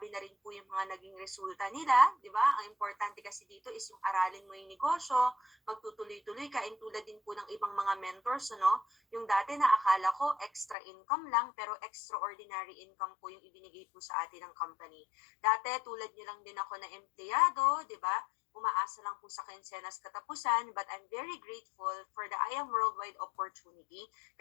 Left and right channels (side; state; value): right; drops out; at 10.8 s